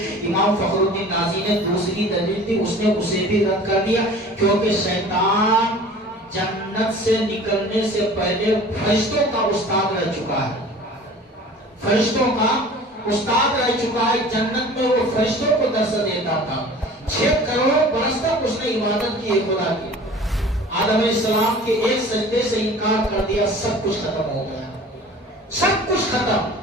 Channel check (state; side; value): normal; both; correlation 0.44